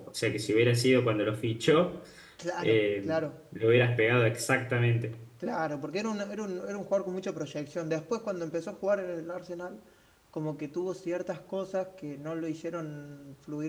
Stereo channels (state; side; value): identical; both; correlation 1.00